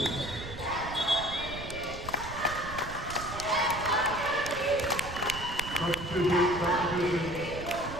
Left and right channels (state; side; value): noise; right; rumble, 10 dB below the sound